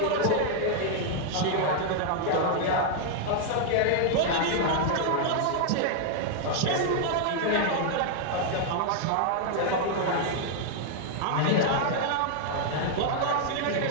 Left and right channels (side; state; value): both; different; correlation 0.00